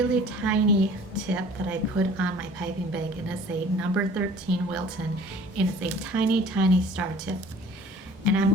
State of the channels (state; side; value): normal; both; correlation 0.49